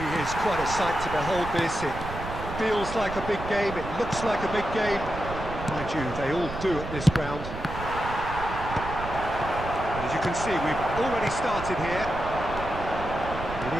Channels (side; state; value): right; noise; rumble, 9 dB below the sound